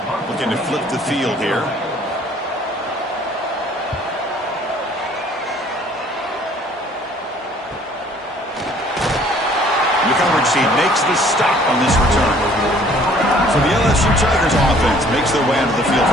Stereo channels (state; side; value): normal; both; correlation 0.56